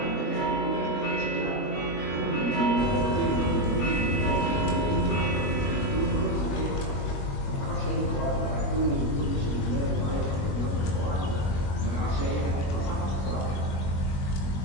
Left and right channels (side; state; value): right; late; 21 ms